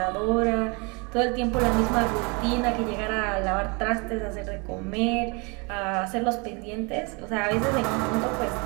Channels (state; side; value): quieter; left; 30.8 dB